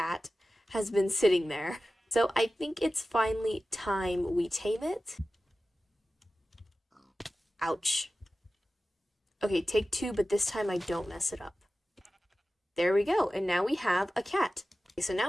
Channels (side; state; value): both; normal; correlation 0.95